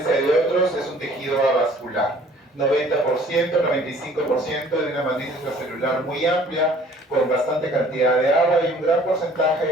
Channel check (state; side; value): normal; both; correlation 0.54